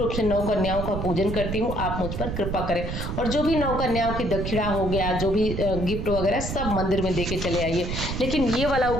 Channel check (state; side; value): noise; right; rumble, 4 dB below the sound